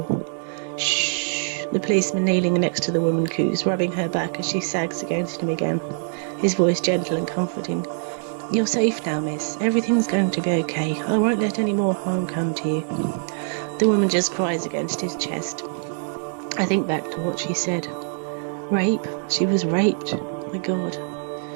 Shh, the policeman kneeling next to the woman coos, rubbing her back as she sags against him again, his voice gentle and comforting. You're safe now, miss. Everything's going to be okay. I won't let any more harm come to you. The woman just cries against his chest. I think back to what she said. Rape? She was raped. My God.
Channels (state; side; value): silent; left; digital silence